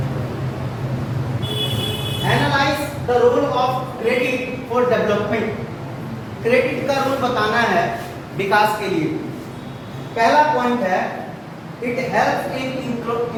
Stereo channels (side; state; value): both; identical; correlation 1.00